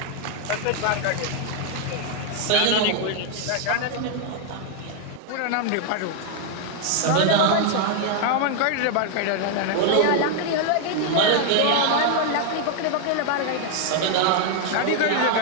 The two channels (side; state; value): both; different; correlation 0.00